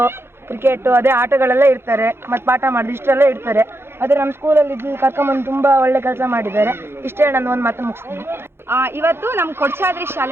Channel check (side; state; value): left; late; 0.11 ms